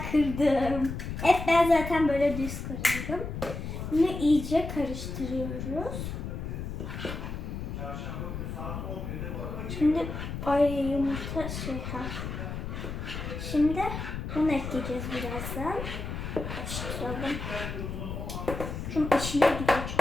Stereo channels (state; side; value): noise; left; rumble, 6 dB below the sound